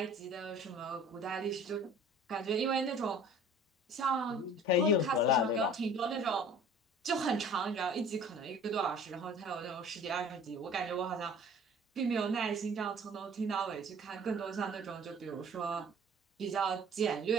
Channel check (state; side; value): normal; both; correlation 0.48